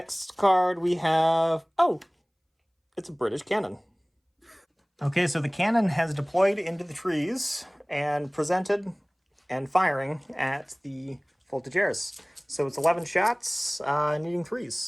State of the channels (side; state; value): both; identical; correlation 1.00